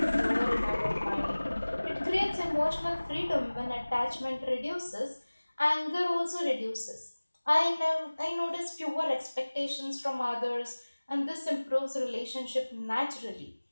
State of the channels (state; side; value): inverted; both; correlation -1.00